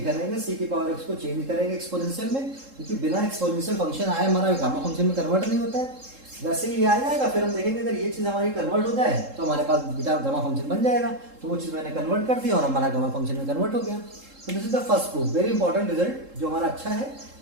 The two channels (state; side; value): late; left; 3.7 ms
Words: रहेंगे, c की पावर x को चेंज करेंगे एक्सपोनेंशियल में, क्योंकि बिना एक्सपोनेंशियल फंक्शन आए हमारा गामा फंक्शन में कन्वर्ट नहीं होता है। वैसे ही आ जाएगा, फिर हम देखेंगे अगर ये चीज़ हमारी कन्वर्ट हो जाए तो हमारे पास बीटा गामा फंक्शन बन जाएगा। तो वो चीज़ मैंने कन्वर्ट कर दी और हमारा गामा फंक्शन में कन्वर्ट हो गया। तो this is the first proof, very important result जो हमारा अच्छा है,